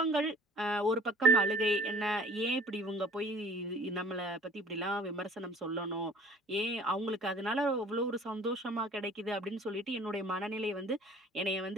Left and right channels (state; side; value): normal; both; correlation 0.49